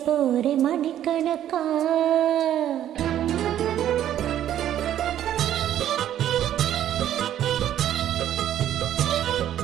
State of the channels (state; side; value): quieter; left; 11.4 dB